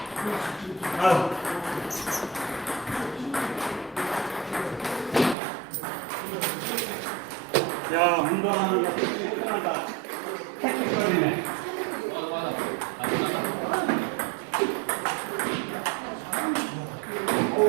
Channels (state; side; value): drops out; left; at 5.4 s